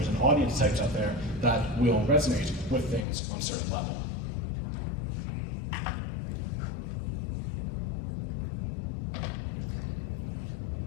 and audience types out there that will resonate with things on a certain level.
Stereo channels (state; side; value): drops out; right; at 3.1 s